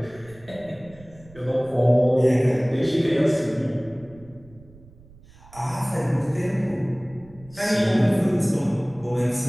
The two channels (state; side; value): noise; right; rumble, 23 dB below the sound